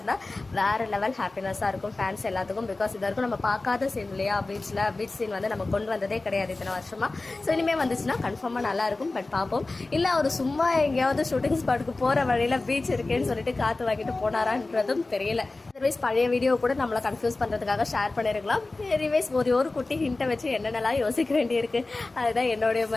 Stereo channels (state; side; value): quieter; right; 3.3 dB